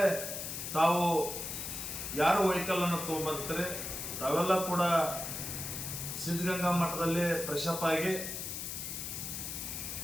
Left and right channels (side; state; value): left; noise; hiss, 5 dB below the sound